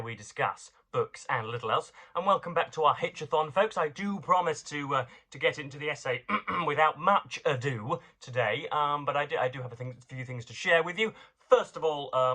we discuss books and little else. And welcome back to our Hitch-athon, folks. I do promise to get into the essay without much ado today, but I do have a few things to share with you. First of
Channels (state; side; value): identical; both; correlation 1.00